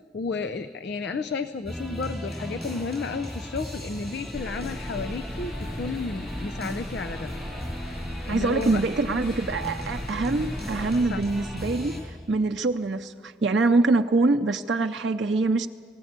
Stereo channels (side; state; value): both; normal; correlation 0.62